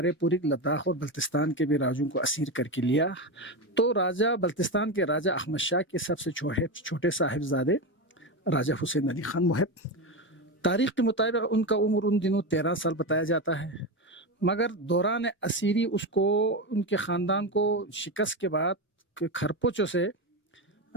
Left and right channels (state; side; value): normal; both; correlation 0.16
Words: پوری لداخ اور بلتستان کے بھی راجوں کو اسیر کر کے لیا. تو راجہ بلتستان کے راجہ احمد شاہ کے سب سے چھوٹے صاحبزادے راجہ حسین علی خان محب، تاریخ کے مطابق ان کا عمر ان دنوں 13 سال بتایا جاتا ہے، مگر دوران اسیری اس کو، ان کے خاندان کو شکست کے بعد کھرپوچوں سے